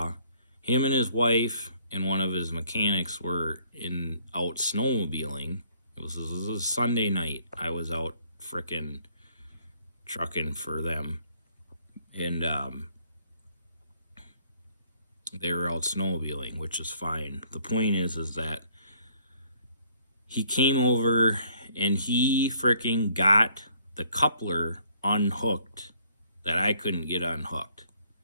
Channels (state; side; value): inverted; both; correlation -0.63